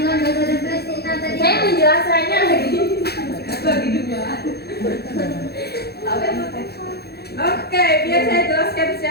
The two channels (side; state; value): right; late; 0.46 ms